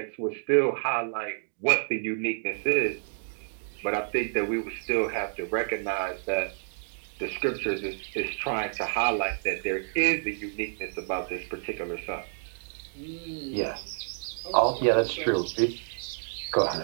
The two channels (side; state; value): left; silent; digital silence